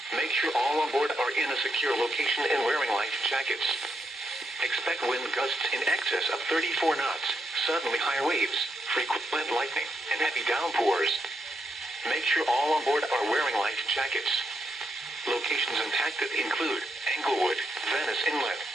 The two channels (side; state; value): both; normal; correlation 0.81